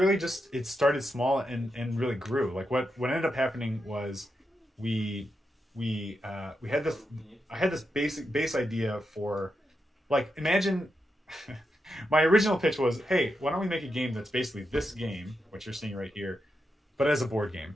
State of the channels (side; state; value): both; normal; correlation 0.86